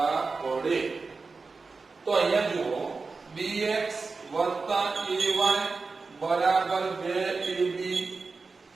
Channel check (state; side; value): quieter; left; 4.2 dB